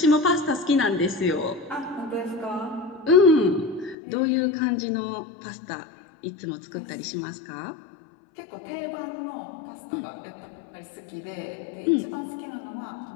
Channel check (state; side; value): drops out; right; at 4.0 s